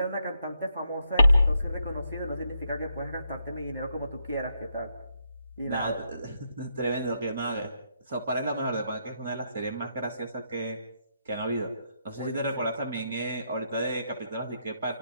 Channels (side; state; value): both; inverted; correlation -0.79